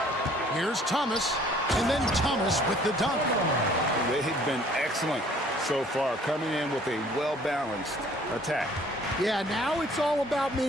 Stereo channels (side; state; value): both; normal; correlation 0.56